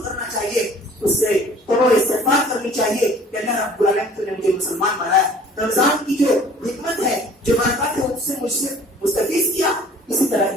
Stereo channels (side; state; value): both; normal; correlation 0.51